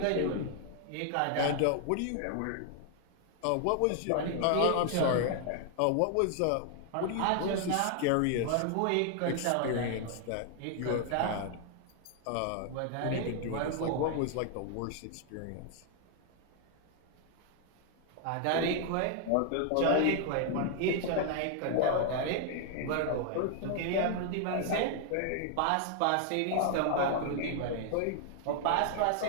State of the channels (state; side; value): different; both; correlation 0.00